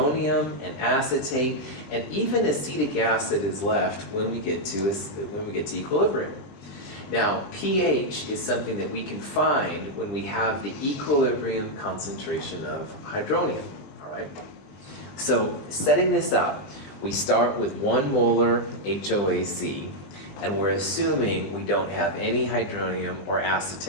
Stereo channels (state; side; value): late; right; 20 ms